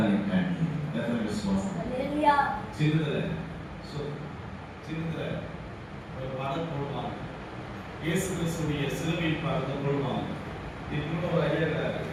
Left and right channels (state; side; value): identical; both; correlation 1.00